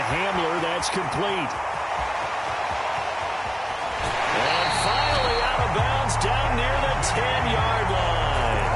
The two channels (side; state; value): both; identical; correlation 1.00